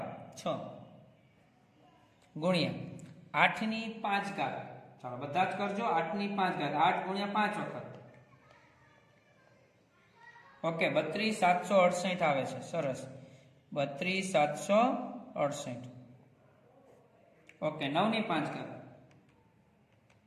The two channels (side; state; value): both; identical; correlation 1.00